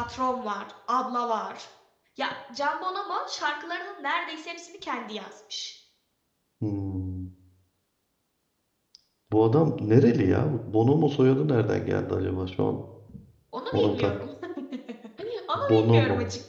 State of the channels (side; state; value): both; identical; correlation 1.00